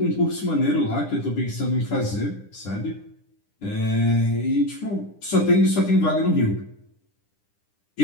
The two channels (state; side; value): late; right; 10 ms